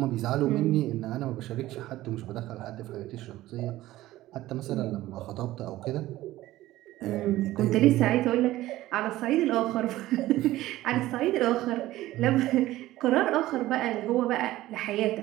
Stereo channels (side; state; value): left; quieter; 16.0 dB